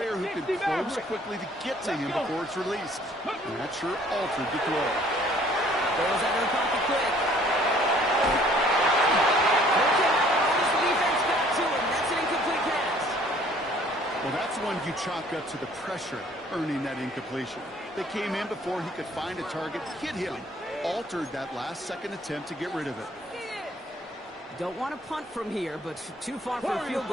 who can close quickly to get to him before it's released. And that sure altered the throw. Throws out of the pocket quick. The defense back to him. That's an incomplete pass. Well, that's one you chalk up to the pressure earning that incompletion. They came in before he could find a target, hit him. Altered that last-second attempt to get rid of it. Don't want to punt from here, but too far for a field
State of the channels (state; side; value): normal; both; correlation 0.57